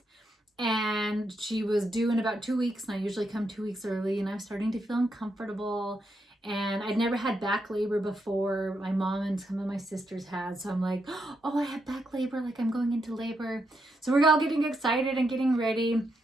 And she was due in about 2 weeks, and I usually come 2 weeks early, and I was starting to feel uncomfortable. And I'd never had back labor before. My mom and some of my sisters had. So I'm like, oh, I have back labor, like I'm going into labor. So we're all getting excited and getting ready.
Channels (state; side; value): normal; both; correlation 0.81